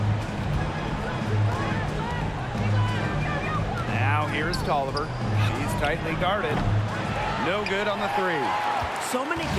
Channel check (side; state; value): both; identical; correlation 1.00